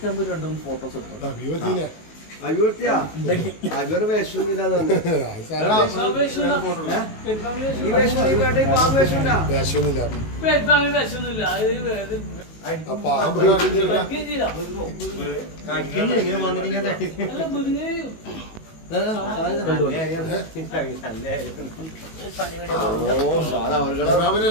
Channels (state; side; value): late; right; 19 ms